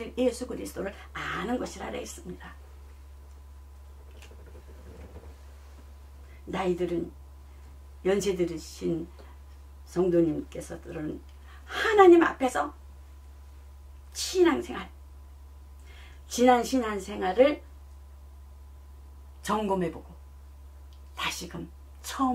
예수 그리스도를 아는 것이라 했습니다. 나이들은 연세 들으신 성도님께서들은 하나님 앞에서 신앙생활 지난 신앙생활을 점검해보고 다시금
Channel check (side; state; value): both; identical; correlation 1.00